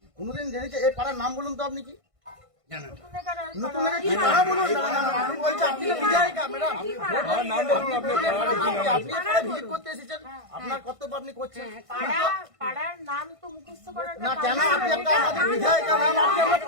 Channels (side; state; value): left; late; 1.5 ms